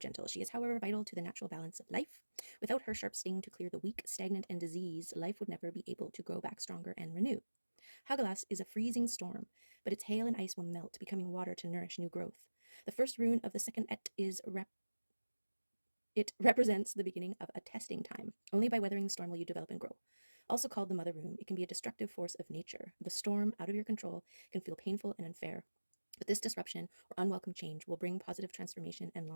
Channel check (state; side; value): inverted; both; correlation -1.00